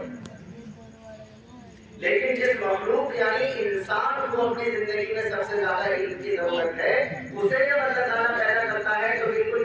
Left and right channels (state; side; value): identical; both; correlation 1.00